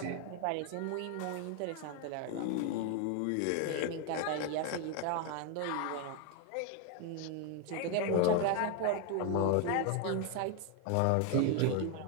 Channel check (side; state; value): both; different; correlation 0.01